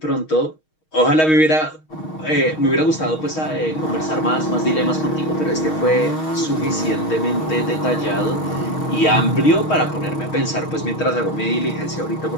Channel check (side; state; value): right; late; 6.4 ms